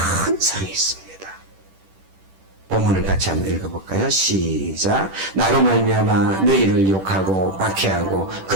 상이 있습니다. 본문을 같이 한번 읽어볼까요? 시작. 나로 말미암아 너희를 욕하고 박해하고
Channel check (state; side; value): late; left; 10 ms